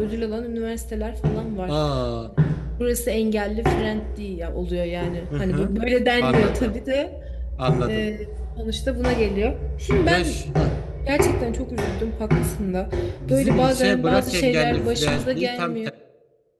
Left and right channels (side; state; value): both; identical; correlation 1.00